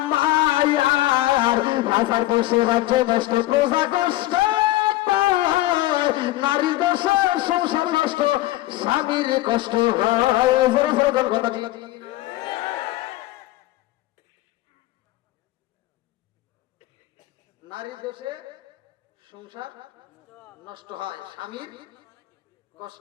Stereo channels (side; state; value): right; quieter; 16.6 dB